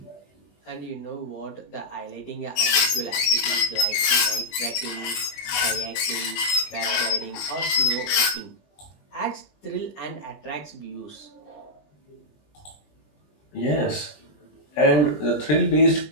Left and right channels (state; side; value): late; right; 20 ms